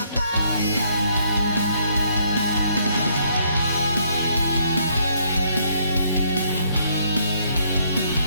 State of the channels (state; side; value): inverted; both; correlation -0.68